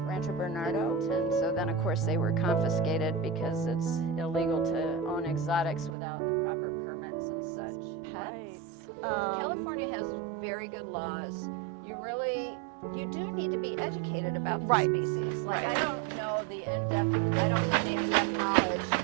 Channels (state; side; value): drops out; left; at 6.0 s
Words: Rancho Bernardo, and so then of course they were confiscated because it's illegal to own exotics without the proper permits and such. California has very good laws. You do need to be educated about the species. Like I don't have the in-depth knowledge.